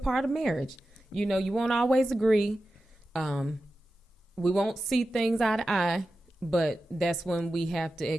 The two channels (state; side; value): normal; both; correlation 0.93